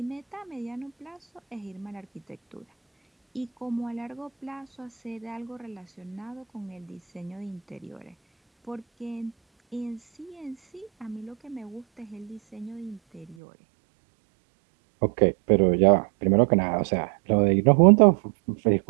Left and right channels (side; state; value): left; drops out; at 13.4 s